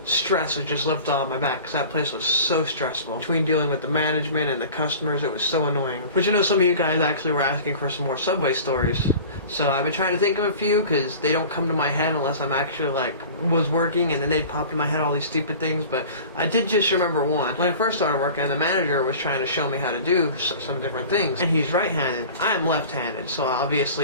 stress was just lifted off my back, because that place was so stressful. Between dealing with the management and the customers, it was so annoying. Which I know some of you guys actually were asking for some more Subway stories. So I've been trying to think of a few, because they don't come to my head unless I'm actually was working, and then they'd pop in my head all these stupid things. But I did just remember one. When I first started working, the manager was trying to show me how to do some different things, and he's right-handed. I'm left-handed, so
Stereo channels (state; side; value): inverted; both; correlation -0.40